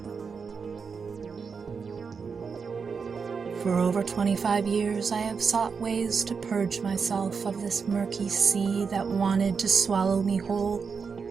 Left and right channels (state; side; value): quieter; left; 5.6 dB